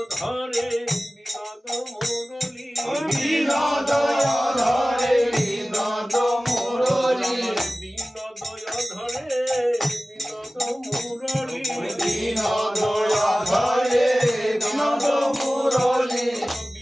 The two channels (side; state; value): both; normal; correlation 0.97